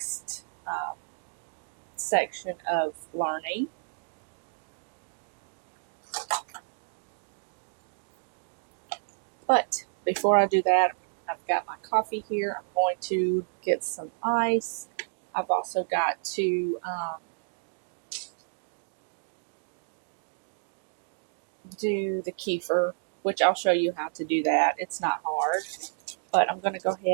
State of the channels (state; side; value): silent; left; digital silence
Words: section of learning. But before I do that, I've got my coffee here. I'm going to get some ice. I've also got to do the kefir, which I'll show you how to do that. It's not hard, but I'm going to go